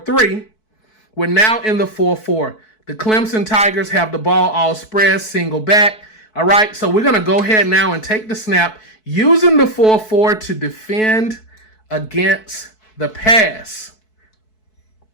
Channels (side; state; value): right; late; 4.6 ms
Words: We're now in the 4-4. The Clemson Tigers have the ball all spread, single back. All right, so we're going to go ahead now and take the snap using the 4-4 to defend against the pass.